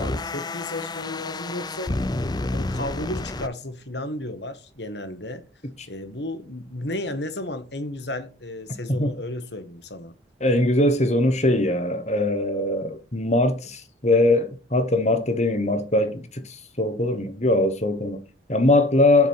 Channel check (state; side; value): normal; both; correlation 0.47